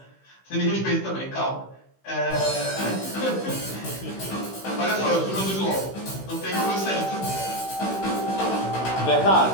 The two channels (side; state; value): right; late; 16 ms